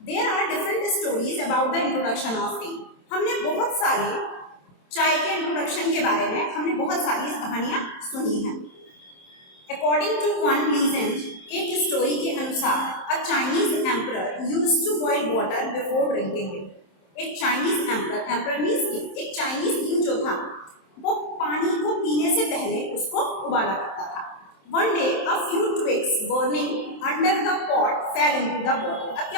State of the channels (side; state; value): right; late; 27 ms